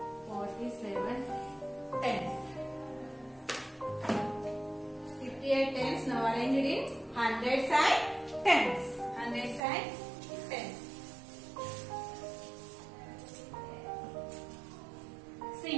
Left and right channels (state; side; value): drops out; left; at 9.6 s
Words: 47 tens. 58 tens. Now arrange it in hundreds and tens. Hundreds and tens. See